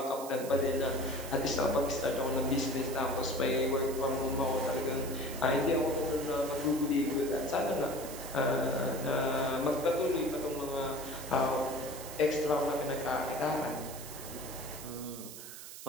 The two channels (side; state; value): right; noise; hiss, 12 dB below the sound